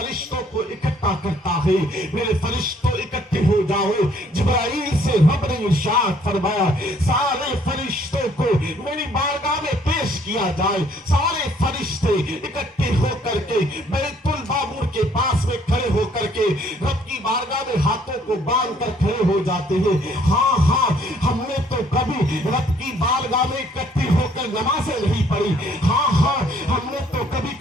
को इकट्ठा करता है, मेरे फरिश्तों इकट्ठे हो जाओ। जिब्राइल से रब ने इरशाद फरमाया, सारे फरिश्तों को मेरी बारगाह में पेश किया जाए। सारे फरिश्ते इकट्ठे होकर के बैतुल मामूर के पास में खड़े होकर के रब की बारगाह में हाथों को बांध कर खड़े हो जाते हैं। हाँ, हमने तो कभी रब की बारगाह में इकट्ठे होकर नमाजें नहीं पढ़ी, हाँ, हमने तो कभी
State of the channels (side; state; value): both; normal; correlation 0.62